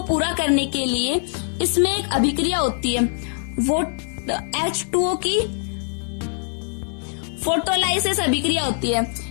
पूरा करने के लिए इसमें एक अभिक्रिया होती है, वो H2O की फोटोलाइसिस अभिक्रिया होती है।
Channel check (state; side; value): silent; right; 56 dB below the other